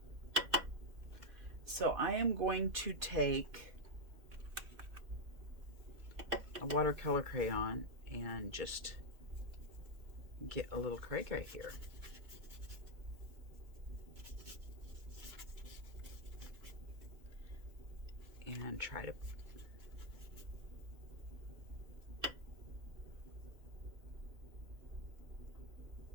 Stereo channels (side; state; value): left; late; 2.4 ms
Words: So I am going to take a watercolor crayon and just get a little cray right here. And try to